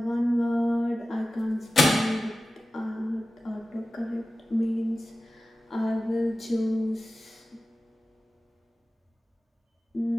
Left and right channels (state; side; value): normal; both; correlation 0.95